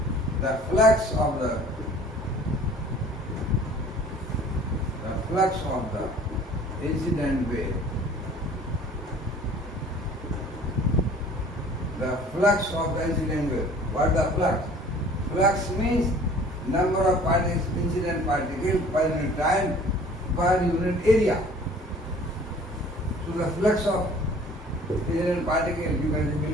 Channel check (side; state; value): both; normal; correlation 0.50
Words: the flux of the incident wave, the flux of the incident wave. What is the flux? Flux means number of particles, incident particles per unit time per unit area. So the flux of incident particle you can